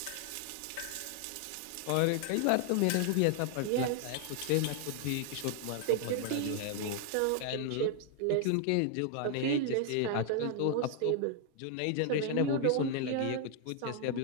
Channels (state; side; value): different; both; correlation 0.00